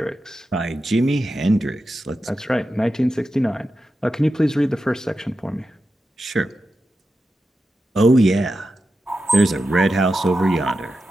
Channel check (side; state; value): both; normal; correlation 0.90